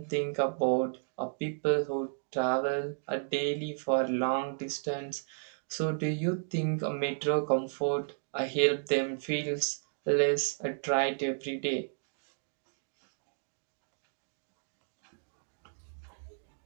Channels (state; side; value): silent; left; digital silence